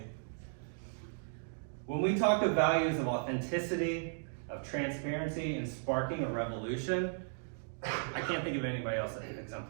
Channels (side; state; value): left; silent; digital silence